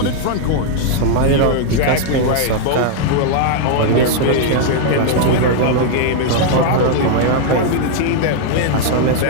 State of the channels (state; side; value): different; both; correlation 0.00